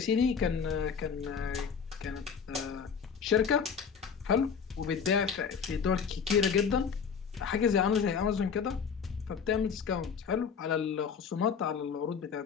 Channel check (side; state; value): right; quieter; 6.5 dB